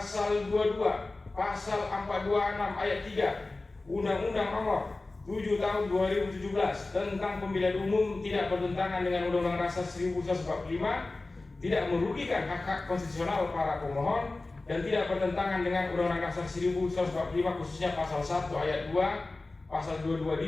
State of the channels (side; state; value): right; quieter; 3.2 dB